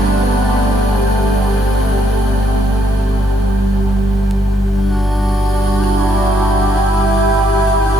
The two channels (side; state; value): both; normal; correlation 0.74